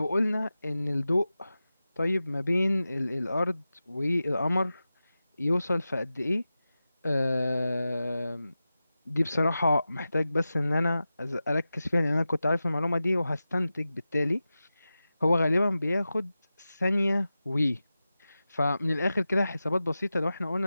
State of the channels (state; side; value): inverted; both; correlation -0.94